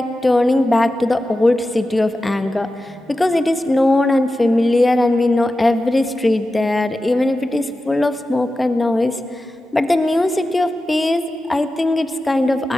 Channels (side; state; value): both; normal; correlation 0.93